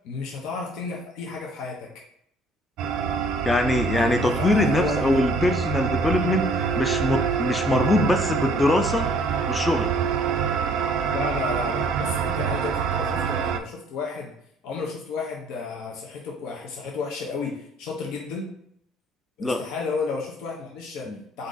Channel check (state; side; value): normal; both; correlation 0.58